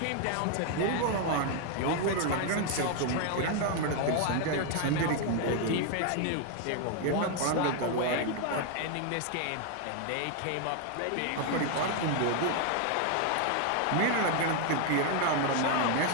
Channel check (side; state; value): both; different; correlation 0.00